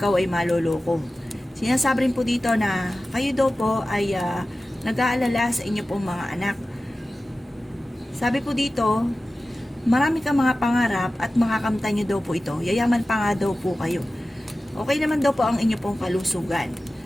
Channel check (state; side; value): normal; both; correlation 0.95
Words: ay maloloko. Sinasabi rin po dito na kayo daw po ay nag-aalala sa inyo pong mga anak. Sabi po dito, marami kang mga pangarap at makakamtan nyo daw po ito. Yayaman pa nga daw po kayo. Okay naman daw po ang inyo pong kalusugan.